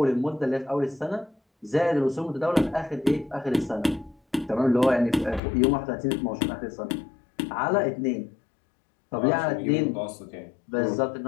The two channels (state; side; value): drops out; right; at 5.4 s